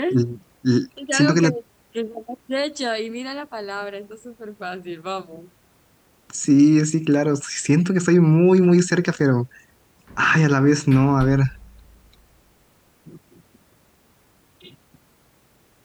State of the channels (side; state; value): both; identical; correlation 1.00